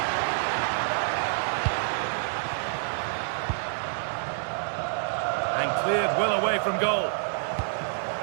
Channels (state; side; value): silent; left; digital silence